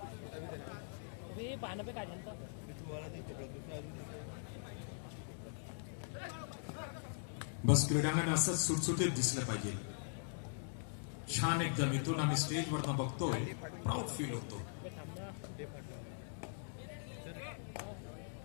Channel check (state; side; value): silent; right; digital silence